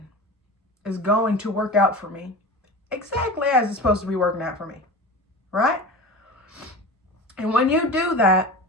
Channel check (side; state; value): both; normal; correlation 0.32